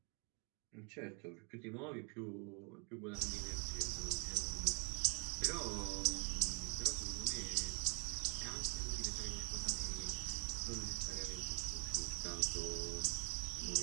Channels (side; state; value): left; quieter; 35.6 dB